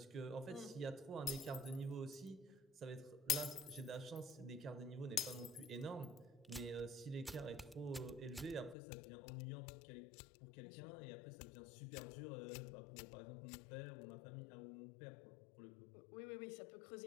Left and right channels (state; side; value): drops out; right; at 8.8 s